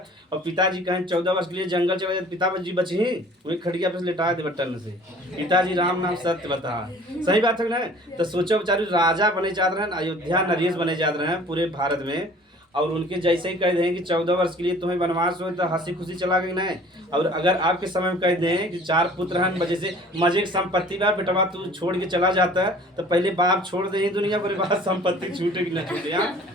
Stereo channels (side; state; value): both; normal; correlation 0.49